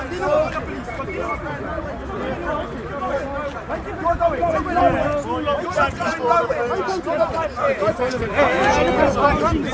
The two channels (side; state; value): both; identical; correlation 1.00